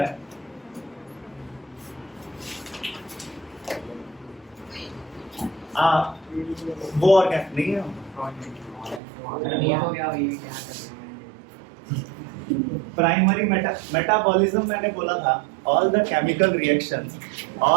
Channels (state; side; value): drops out; left; at 9.0 s